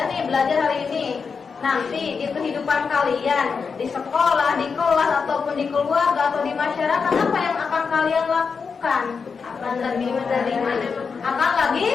nih belajar hari ini. Nanti di kehidupan kalian di sekolah, di kelas ataupun di keluarga atau di masyarakat apa yang akan kalian lakukan? Akan lebih menerima, akan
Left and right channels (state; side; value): quieter; right; 5.5 dB